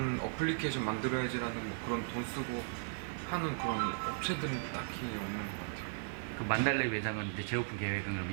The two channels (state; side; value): silent; left; digital silence